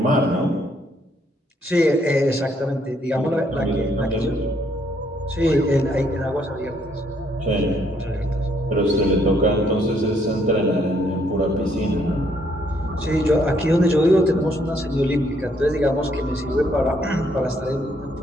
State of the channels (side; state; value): both; normal; correlation 0.70